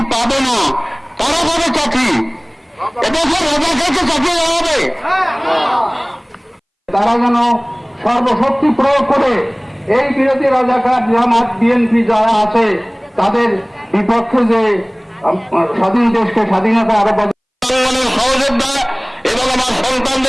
পাবে না, তারা পাবে চাকরি। এদেশের রাজাকে চাকরি দেওয়া হবে। তারা যেন সর্বশক্তি প্রয়োগ করে এই বিরোধী রাজাকার জামাত বিএনপি যারা আছে তাদের বিপক্ষে যে স্বাধীন দেশকে স্বাধীনতা আরো সহযোদ্ধা এবং আমার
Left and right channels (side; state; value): both; identical; correlation 1.00